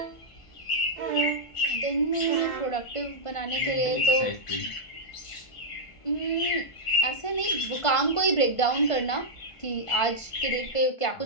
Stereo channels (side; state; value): right; late; 1.5 ms